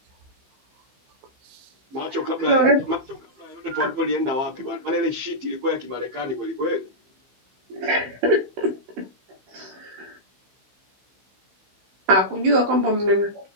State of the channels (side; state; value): left; late; 16 ms